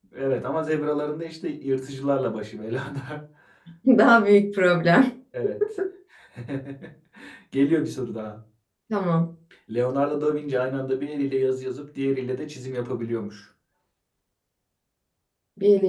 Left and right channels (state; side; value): identical; both; correlation 1.00